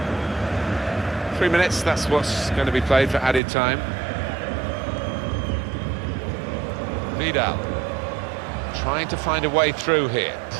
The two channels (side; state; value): left; drops out; at 3.4 s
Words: Three minutes, that's what's going to be played for added time. Vidal trying to find a way through here,